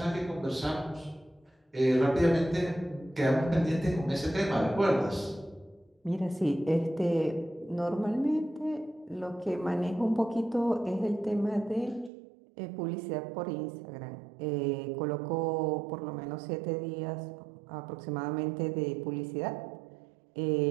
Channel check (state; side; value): drops out; left; at 12.1 s